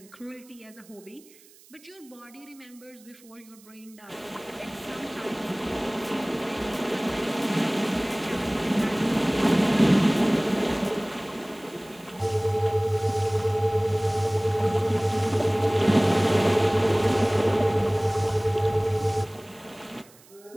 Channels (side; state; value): right; noise; hiss, 26 dB below the sound